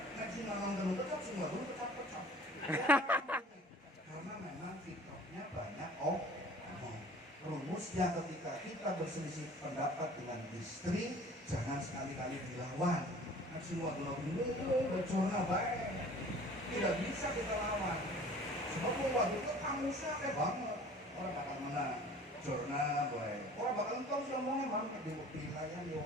Nek si lanang perlu kecap, si wadon kecap-kecap. Karena memang fitrahnya banyak ngomong. Rumusnya ketika kita berselisih pendapat dengan istri, jangan sekali-kali dilawan. Semua dulu bercorna baik, tidak bisa kita lawan. Sebab waktu itu kamusnya kayak banget, orang bakal menang. Corna baik, orang bakal tahu semuanya banget di wilayah di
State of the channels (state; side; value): normal; both; correlation 0.47